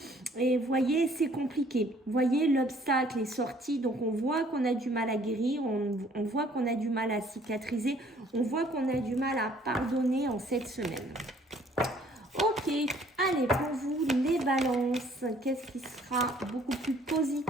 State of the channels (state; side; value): normal; both; correlation 0.59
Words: et vous voyez, c'est compliqué. Vous voyez, l'obstacle est sorti, donc on voit qu'on a du mal à guérir, on voit qu'on a du mal à cicatriser, on voit qu'on a du mal à pardonner en cette semaine. Ok, allez, pour vous, les balances, qu'est-ce qui sera beaucoup plus